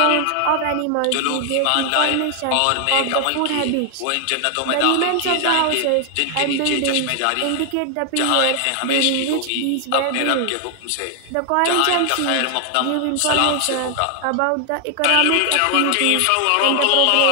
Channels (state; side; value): different; both; correlation 0.00